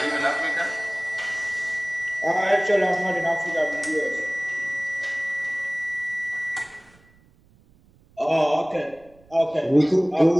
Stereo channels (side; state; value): right; noise; rumble, 30 dB below the sound